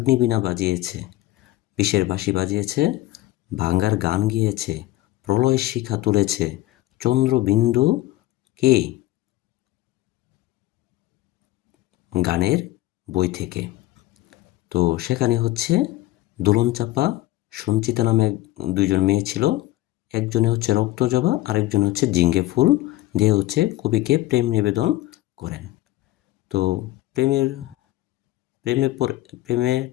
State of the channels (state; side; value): quieter; right; 16.5 dB